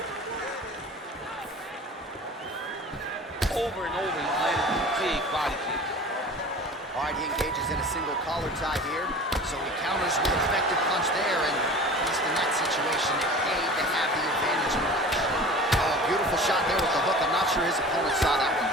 Over and over, he's landed a big body kick. All right, he engages in a single collar tie here. So he counters with an effective punch there, and at least in that situation, it paid to have the advantage in the punch. Oh, beautiful shot there with the hook. I'm not sure his opponent saw that one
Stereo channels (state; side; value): normal; both; correlation 0.40